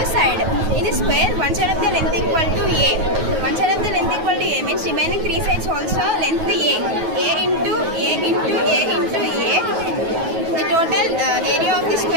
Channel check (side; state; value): left; late; 9.2 ms